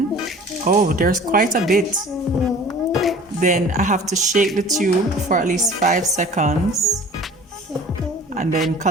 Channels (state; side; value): normal; both; correlation 0.45